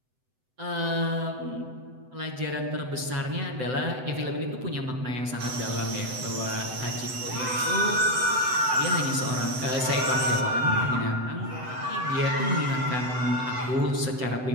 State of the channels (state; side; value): late; left; 7.9 ms